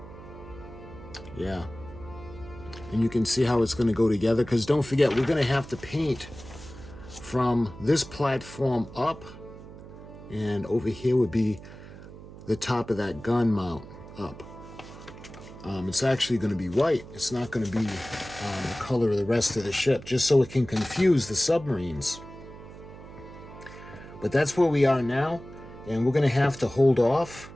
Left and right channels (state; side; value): noise; right; hum, 16 dB below the sound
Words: Yeah. And you can see how it's going to go together, because don't forget, we're going to have to paint from this platform up, and over here would be the top of that gun mount up. It's actually going to be white. It's not going to be the color of the rest of the ship, just so it can confuse the submarines. But that's where we are now, and we're going to have to hold off,